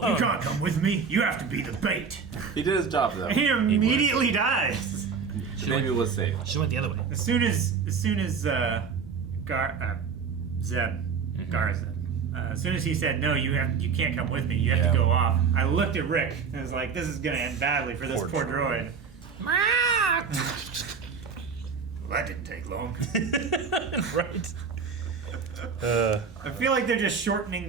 You can't come with me. You have to be the bait. He did his job, though. He immediately dies. The baby was safe. She went the other way. As soon as Zeb, Garzeb, as soon as he said, "No, you can't come with me. You have to go off," I looked at Rick and was like, "This is gonna end badly for this poor droid." Well, that didn't take long. Right. I feel like they're just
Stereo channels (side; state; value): left; quieter; 5.8 dB